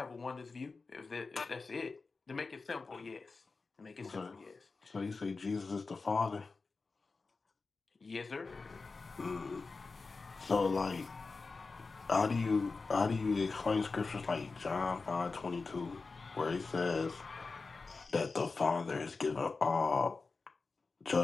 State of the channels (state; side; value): quieter; right; 4.1 dB